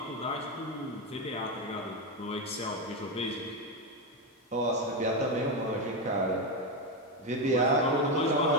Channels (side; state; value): both; normal; correlation 0.10